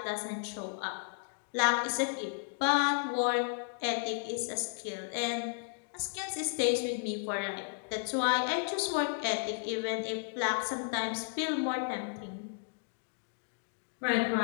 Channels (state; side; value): silent; right; digital silence